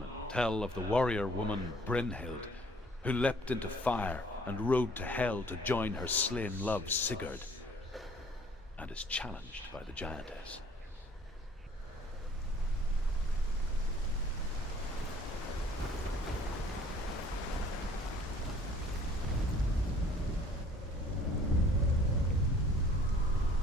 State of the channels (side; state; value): both; normal; correlation 0.55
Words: tell of the warrior woman Brynhild, who leapt into fire and rode to Hell to join her slain love Sigurd, and is challenged by the giantess.